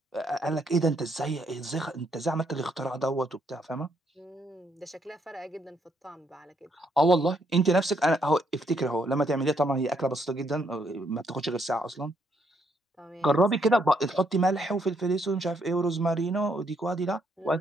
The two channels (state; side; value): normal; both; correlation 0.73